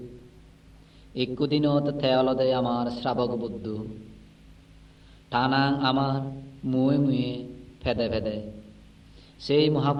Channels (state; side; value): identical; both; correlation 1.00